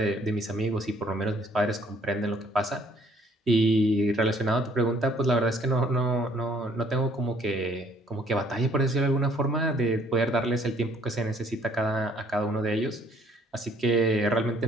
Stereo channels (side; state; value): both; normal; correlation 0.62